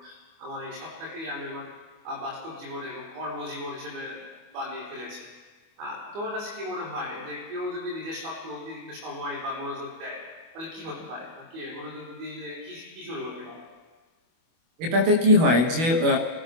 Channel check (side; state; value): left; late; 25 ms